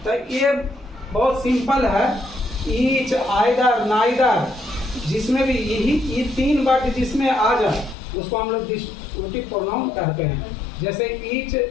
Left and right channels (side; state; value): right; drops out; at 8.0 s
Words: तो ये बहुत सिंपल है, ईच, आइदर, नाइदर, जिसमें भी ये 3 वर्ड जिसमें आ जाए उसको हम लोग डिस्ट्रीब्यूटिव प्रोनाउन कहते हैं। जैसे ईच